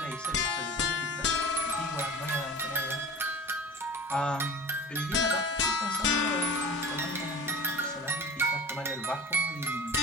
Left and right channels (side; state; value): both; normal; correlation 0.37